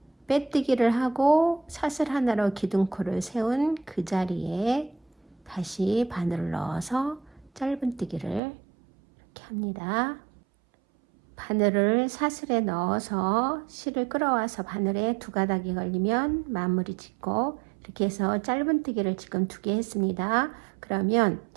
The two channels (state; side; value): drops out; left; at 8.4 s